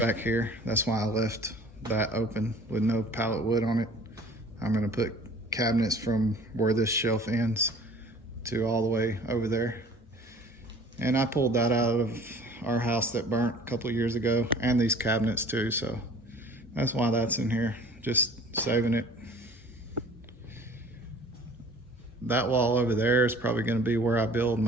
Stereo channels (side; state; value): both; normal; correlation 0.49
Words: here. That's why I left that open with no pallet wood on it. I'm going to put cabinets from where this shelf ends to all the way over there. And I pulled that out of our house that burnt a couple of years ago, and these cabinets too, so that's why that's in here, just saving it. That wall over there is probably going to be where I build